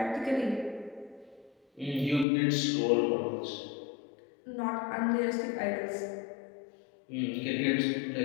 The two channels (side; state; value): right; drops out; at 2.2 s